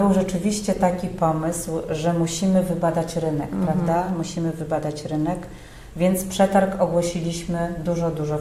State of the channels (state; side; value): identical; both; correlation 1.00